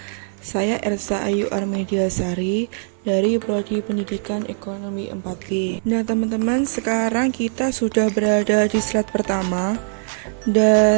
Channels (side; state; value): left; silent; 56 dB below the other